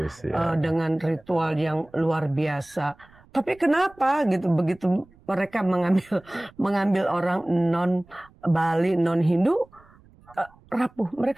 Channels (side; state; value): right; noise; rumble, 28 dB below the sound